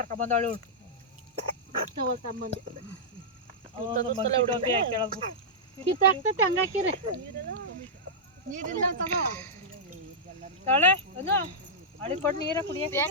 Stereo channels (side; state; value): both; normal; correlation -0.10